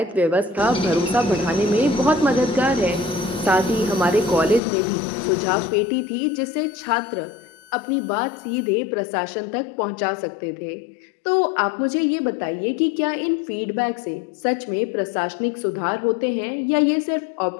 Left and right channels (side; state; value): right; drops out; at 4.6 s